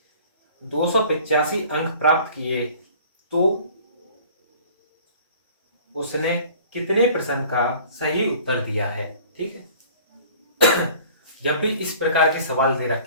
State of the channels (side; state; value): both; inverted; correlation -0.48